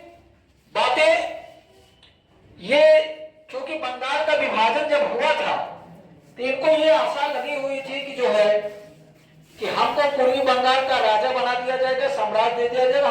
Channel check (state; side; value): identical; both; correlation 1.00